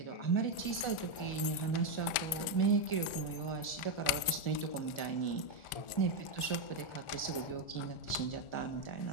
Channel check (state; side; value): late; right; 1.4 ms